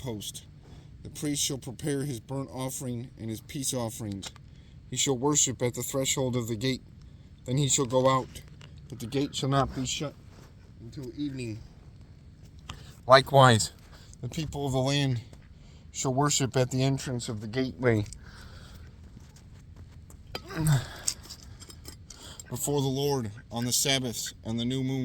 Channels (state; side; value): identical; both; correlation 1.00